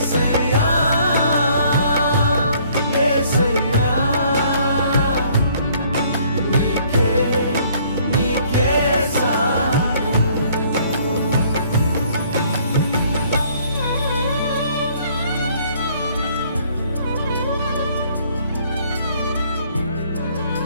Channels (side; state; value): both; inverted; correlation -0.60